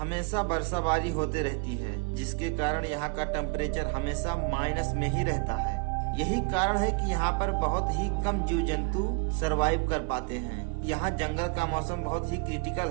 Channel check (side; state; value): left; quieter; 31.8 dB